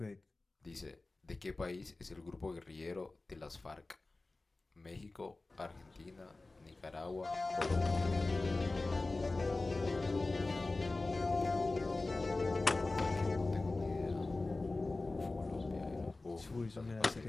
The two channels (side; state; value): right; quieter; 3.3 dB